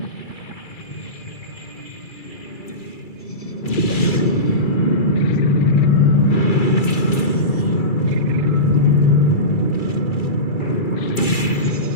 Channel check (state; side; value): late; right; 2.3 ms